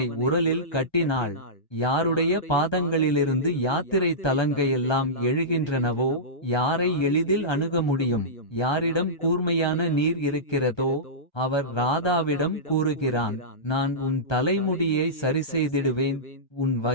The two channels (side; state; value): right; late; 1.2 ms